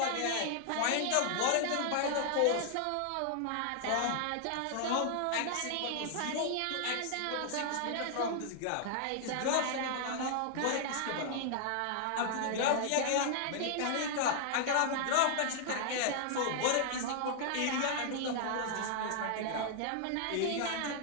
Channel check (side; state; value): both; different; correlation 0.00